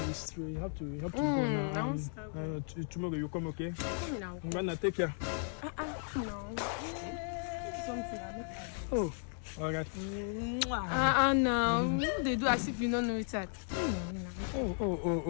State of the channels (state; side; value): silent; right; 54 dB below the other